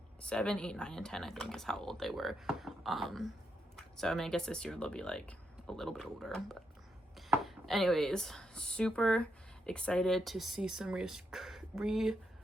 7, 8, 9, and 10, I think is how old they were. So I mean, I guess this year they'll be like a little bit older, but anyways, super excited to see some reoccurring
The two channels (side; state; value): both; normal; correlation 0.81